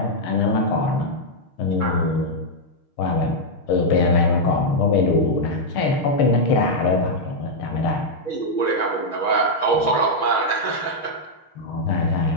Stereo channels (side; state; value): right; late; 6.6 ms